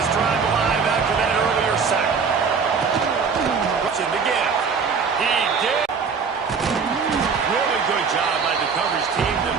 drive alive after that earlier sack. Rushing to get it. He did. Really good job by the coverage team to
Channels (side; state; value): left; quieter; 5.6 dB